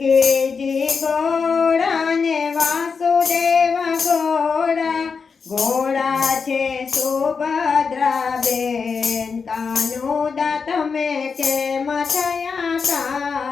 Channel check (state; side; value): quieter; right; 5.4 dB